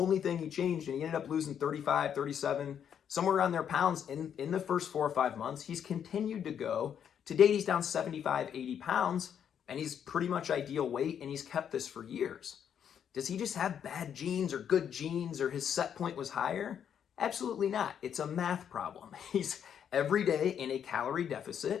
thing he changed, and he ended up losing 35, 37, somewhere around there pounds in the first 4 or 5 months. He's continued to go. To date, he's down 75, 80 pounds, and he's pretty much ideal weight, and he's kept this for years. Does he just have bad genes or good genes, or his set point was higher? Absolutely not. It's a math problem. He's every day in a calorie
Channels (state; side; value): quieter; right; 8.6 dB